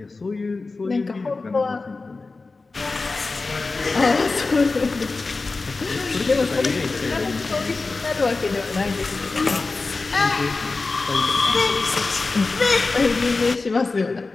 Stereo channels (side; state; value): right; quieter; 3.7 dB